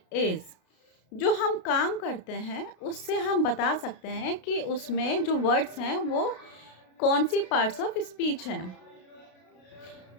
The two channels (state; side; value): late; right; 32 ms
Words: is. जो हम काम करते हैं उससे हम बता सकते हैं कि उसमें जो वर्ड्स हैं वो कौन सी पार्ट्स ऑफ स्पीच हैं.